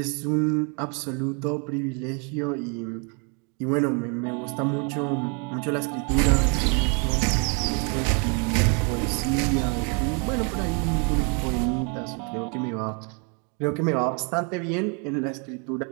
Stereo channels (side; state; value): left; quieter; 36.1 dB